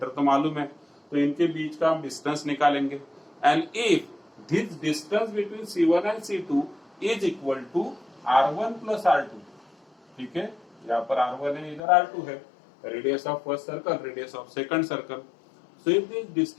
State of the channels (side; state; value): right; drops out; at 11.8 s